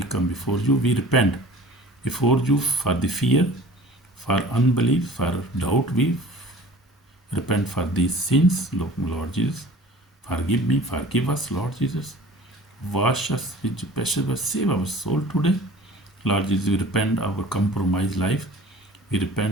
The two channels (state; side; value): normal; both; correlation 0.45